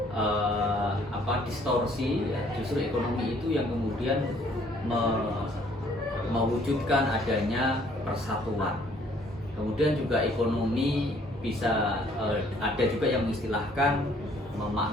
distorsi, justru ekonomi itu yang kemudian mewujudkan adanya persatuan. Kemudian juga ekonomi bisa ada juga yang mengistilahkan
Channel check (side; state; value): both; normal; correlation 0.61